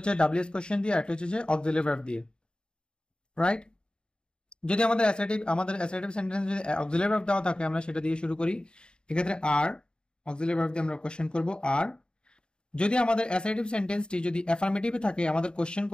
ডাব্লিউএস কোশ্চেন দিয়ে, একটা হচ্ছে অক্সিলারি ভার্ব দিয়ে, রাইট? যদি আমাদের অ্যাসার্টিভ সেন্টেন্স যদি অক্সিলারি ভার্ব দেওয়া থাকে আমরা সেটা দিয়ে শুরু করি। এক্ষেত্রে আর অক্সিলারি ভার্ব দিয়ে আমরা কোশ্চেন করব। আর যদি আমাদের অ্যাসার্টিভ সেন্টেন্সটি যদি অ্যাফার্মেটিভে থাকে আমাদের কোশ্চেন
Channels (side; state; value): right; late; 0.050 ms